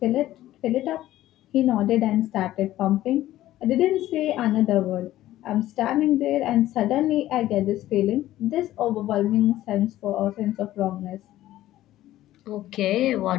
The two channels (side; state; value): right; quieter; 14.5 dB